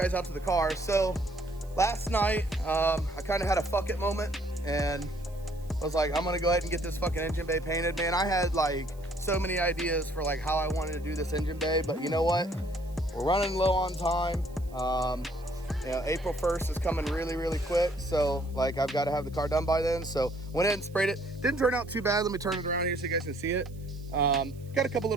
out to the car. So, last night, I kind of had a fuck it moment, and I was like, I'm gonna go ahead and get this fucking engine bay painted. Man, I had like so many ideas for like how I wanted to do this engine bay, but you know what? We're running low on time. April 1st is coming really, really quick. So like I've got to have the car done by then. So went ahead and sprayed it. Didn't turn out too bad. Let me turn it around here so you guys can see it. Got a couple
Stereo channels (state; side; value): noise; right; hiss, 27 dB below the sound